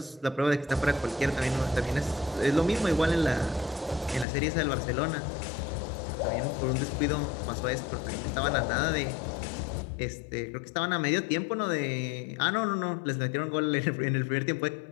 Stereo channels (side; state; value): right; drops out; at 4.2 s